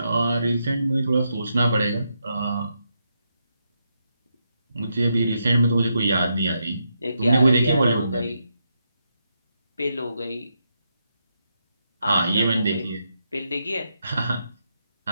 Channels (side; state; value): both; inverted; correlation -0.82